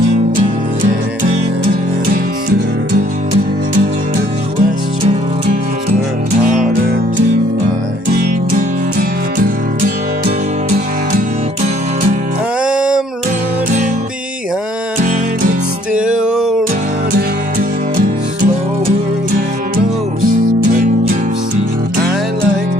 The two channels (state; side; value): late; left; 1.1 ms